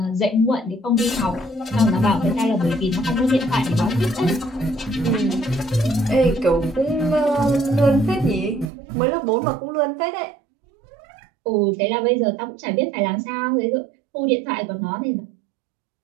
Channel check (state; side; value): drops out; left; at 8.7 s